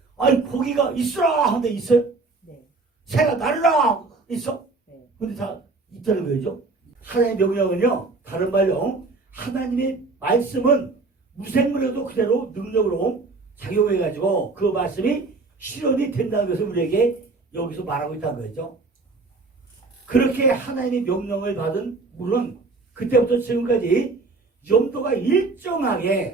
아니 고기가 있으라 하는데 있어요? 네. 새가 날으라 있어? 네. 근데 다 있다는 거죠. 하나님의 명령은요 다른 말로 하나님의 말씀은 무생물에도 그대로 능력으로 작용해가지고 그 말씀이 실현이 된다는 것을 우리에게 여기서 말하고 있다는 거죠. 그렇게 하나님의 명령을 받은 물은 그때부터 지금까지 염도가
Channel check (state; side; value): quieter; left; 3.7 dB